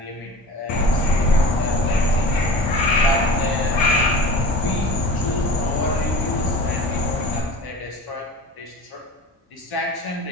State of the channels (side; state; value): both; normal; correlation 0.37